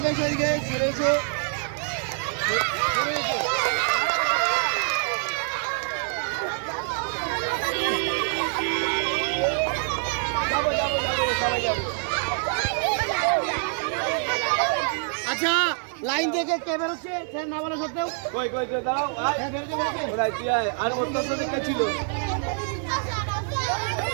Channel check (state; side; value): silent; left; 61 dB below the other